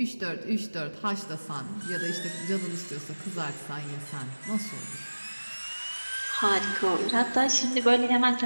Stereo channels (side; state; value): both; inverted; correlation -1.00